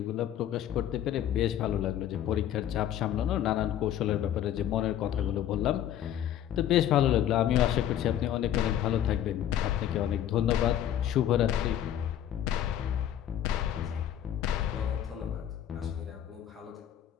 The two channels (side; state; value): right; quieter; 10.9 dB